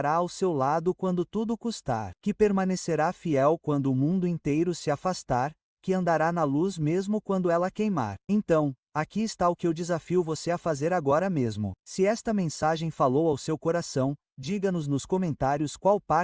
ao seu lado quando tudo custar, que permanecerá fiel quando o mundo inteiro se afastar, que andará na luz mesmo quando ela queimar. Então, aqui está o que eu desafio você a fazer agora mesmo. Se esta mensagem falou ao seu coração, Diga-nos nos comentários qual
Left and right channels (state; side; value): identical; both; correlation 1.00